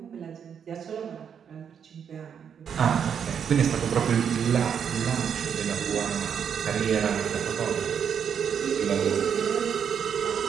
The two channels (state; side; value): quieter; left; 7.7 dB